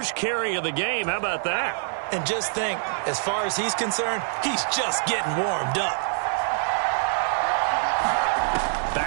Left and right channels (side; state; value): left; silent; digital silence